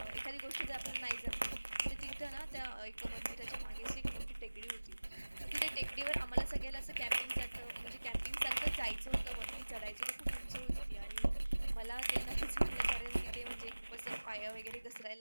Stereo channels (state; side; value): inverted; both; correlation -1.00